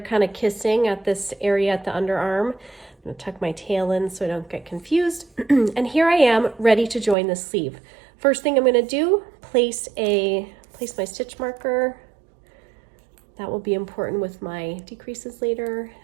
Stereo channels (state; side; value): drops out; left; at 7.2 s